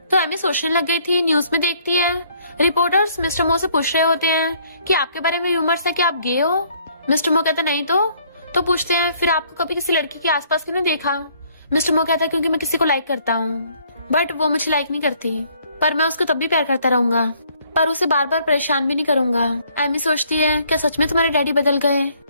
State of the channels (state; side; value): inverted; both; correlation -0.63